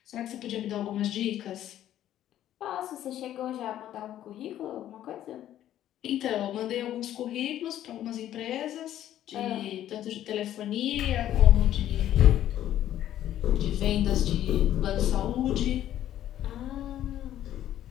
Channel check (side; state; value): right; quieter; 12.0 dB